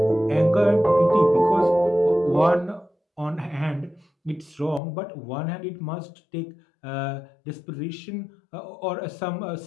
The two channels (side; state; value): right; drops out; at 4.8 s